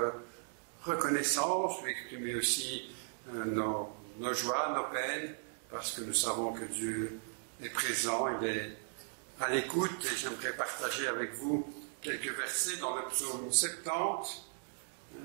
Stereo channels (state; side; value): silent; left; digital silence